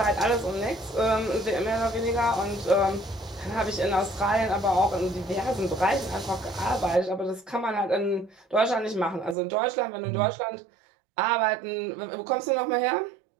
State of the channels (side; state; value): left; drops out; at 9.3 s